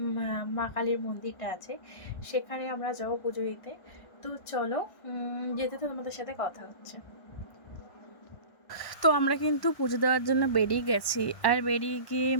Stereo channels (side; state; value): right; late; 1.1 ms